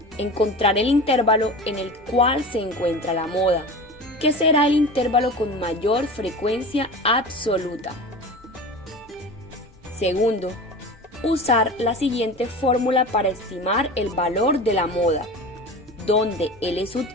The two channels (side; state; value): both; normal; correlation 0.33